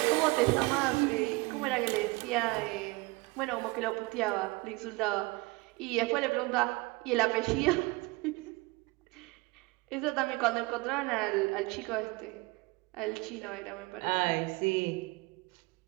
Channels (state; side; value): quieter; left; 24.6 dB